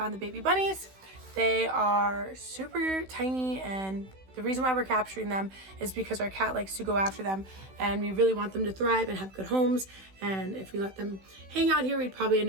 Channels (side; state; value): left; late; 16 ms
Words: the baby bunnies. They are super tiny, and the reason why we're capturing them is because our cat likes to go after them, and we really want them to thrive and have good homes. And if we let them hang out here, we'd probably end